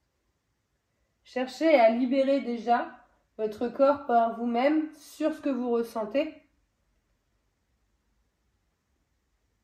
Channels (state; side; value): identical; both; correlation 1.00